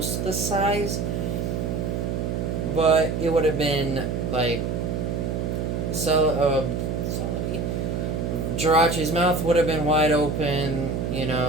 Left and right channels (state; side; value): noise; right; hum, 1 dB below the sound